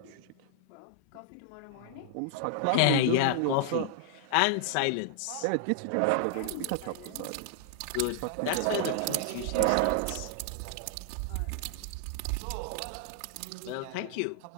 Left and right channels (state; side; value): different; both; correlation -0.01